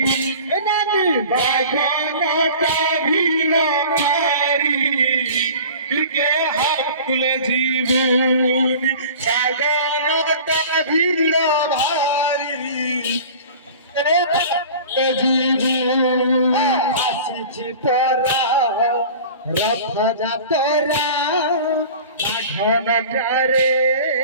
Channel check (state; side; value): inverted; both; correlation -0.41